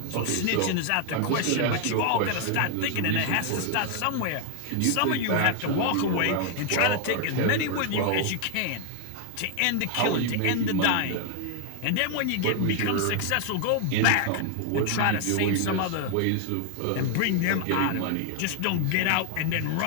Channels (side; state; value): both; different; correlation 0.00